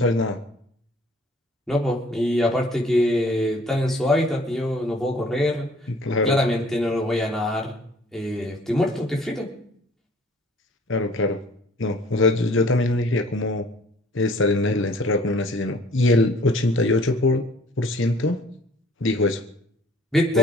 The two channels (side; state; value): both; normal; correlation 0.54